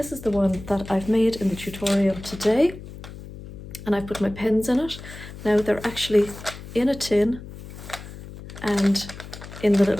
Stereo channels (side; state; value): left; noise; hum, 14 dB below the sound